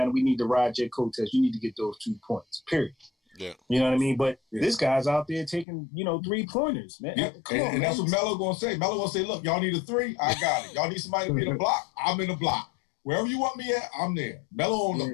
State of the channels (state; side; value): drops out; right; at 5.7 s